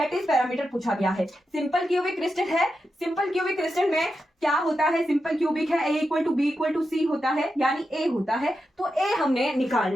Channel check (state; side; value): normal; both; correlation 0.88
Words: पैरामीटर पूछा गया है। सिंपल क्यूबिक क्रिस्टल है, सिंपल क्यूबिक क्रिस्टल में क्या होता है, सिंपल क्यूबिक है, A equal to B equal to C होता है, यानी A होता है, तो A हमने